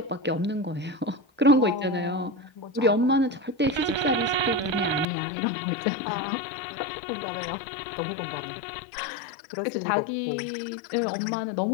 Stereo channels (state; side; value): drops out; right; at 5.1 s